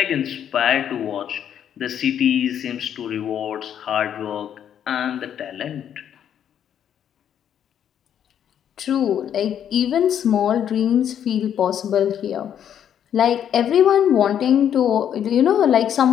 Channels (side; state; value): right; quieter; 9.4 dB